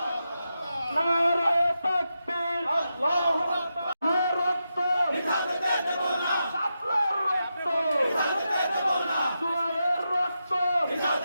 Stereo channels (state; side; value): inverted; both; correlation -0.88